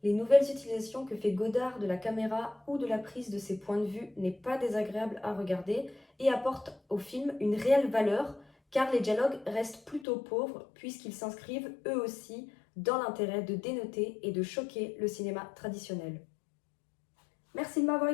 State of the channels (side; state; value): right; drops out; at 10.1 s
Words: Les nouvelles utilisations que fait Godard de la caméra ou de la prise de ses points de vue n'est pas désagréable à regarder et apporte au film une réelle valeur car les dialogues restent plutôt pauvres puisqu'ils s'inscrivent eux aussi dans l'intérêt de dénoter et de choquer le cinéma traditionnel. Merci de m'avoir